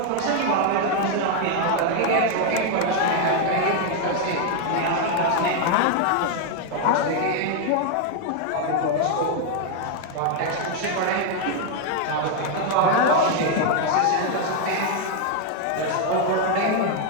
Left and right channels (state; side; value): different; both; correlation 0.01